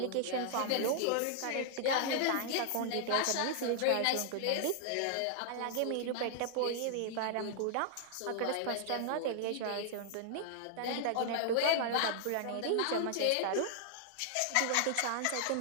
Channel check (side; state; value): both; different; correlation 0.00